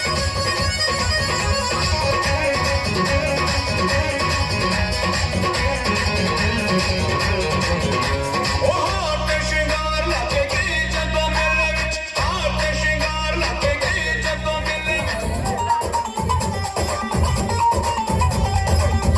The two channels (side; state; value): both; identical; correlation 1.00